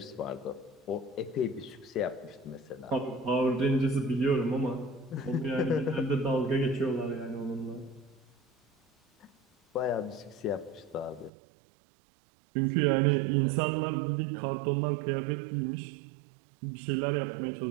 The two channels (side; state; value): left; drops out; at 11.3 s